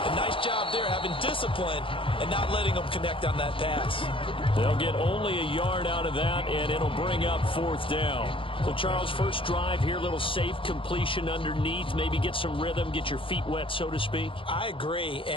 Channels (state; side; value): late; right; 0.25 ms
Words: A nice job there having discipline and not letting them connect on that pass. They'll get only a yard out of that, and it'll bring up 4th down. So, Charles, first drive here, little safe completion underneath. Maybe get some rhythm, get your feet wet, so to speak. I agree,